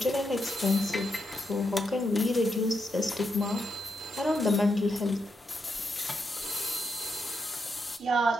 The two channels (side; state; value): both; normal; correlation 0.82